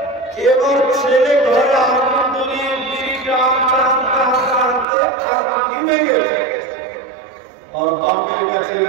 এবার ছেলে ঘরে আগুন ধরিয়ে বিড়িটা আনতে আনতে আনতে আগুন নিভে গেছে। আর বাপের কাছে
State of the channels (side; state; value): left; drops out; at 4.9 s